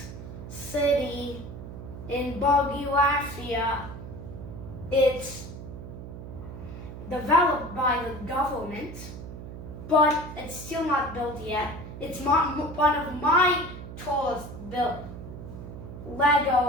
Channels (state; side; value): noise; right; hum, 11 dB below the sound